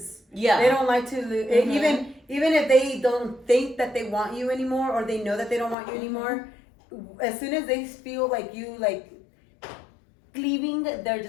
Yeah. They don't like to lose. Mm-hmm. Even if they don't think that they want you anymore, or they know that they don't want you anymore, as soon as they feel like you like leaving, they're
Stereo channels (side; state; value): right; drops out; at 5.8 s